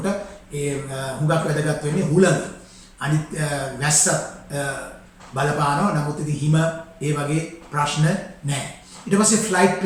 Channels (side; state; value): both; identical; correlation 1.00